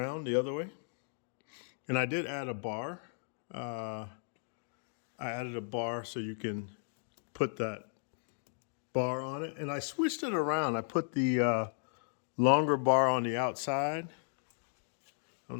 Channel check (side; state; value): right; silent; digital silence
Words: the other way. And I did add a bar. I added a bar so you can put that bar on it. And I switched it around. I put the longer bar on the outside. I don't